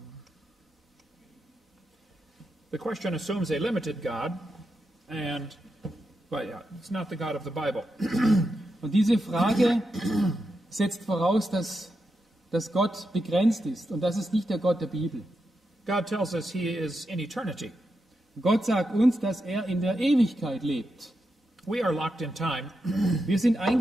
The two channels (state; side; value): normal; both; correlation 0.86